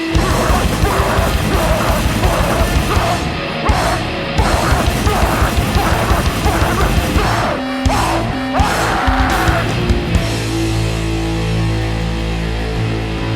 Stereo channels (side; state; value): both; identical; correlation 1.00